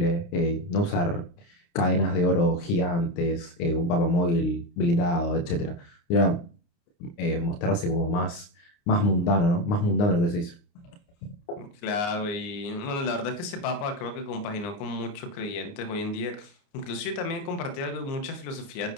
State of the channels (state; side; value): late; right; 29 ms